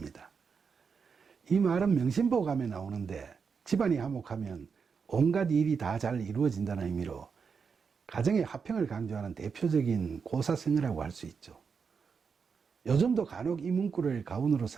이 말은 명심보감에 나오는데 집안이 화목하면 온갖 일이 다 잘 이루어진다는 의미로 가정의 화평을 강조하는 대표적인 고사성어라고 할 수 있죠. 요즘도 간혹 이 문구를 가운으로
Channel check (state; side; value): quieter; left; 5.8 dB